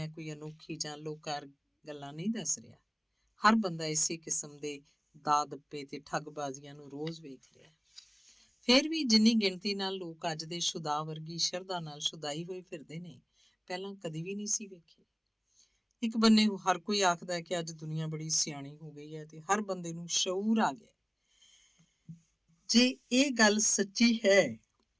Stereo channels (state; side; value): identical; both; correlation 1.00